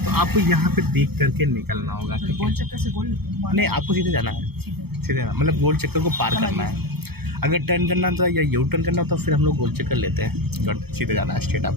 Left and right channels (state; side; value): late; left; 0.96 ms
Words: तो आपको यहाँ पे देख करके निकलना होगा। गोल चक्कर से गोल नहीं, आपको सीधे जाना है, सीधे मतलब गोल चक्कर को पार करना है। अगर टर्न करना तो या यू टर्न करना तो फिर हम लोग गोल चक्कर लेते हैं। गट सीधे जाना है स्ट्रेट,